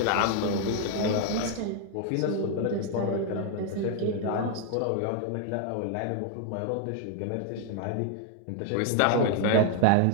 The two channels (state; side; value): different; both; correlation 0.00